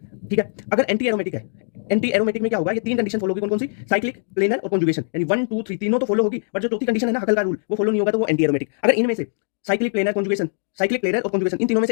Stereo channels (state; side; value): silent; right; digital silence